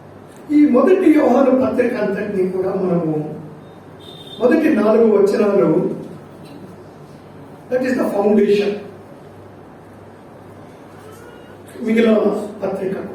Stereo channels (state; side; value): identical; both; correlation 1.00